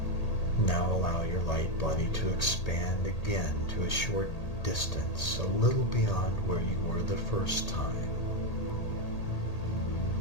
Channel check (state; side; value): late; right; 1.8 ms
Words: Now allow your light body to expand again to a short distance, a little beyond where you were the first time.